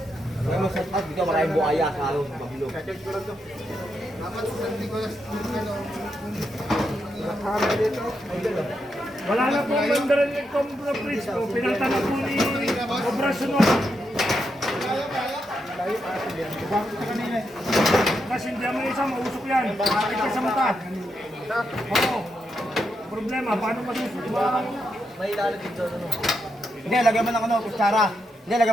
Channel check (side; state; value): both; normal; correlation 0.83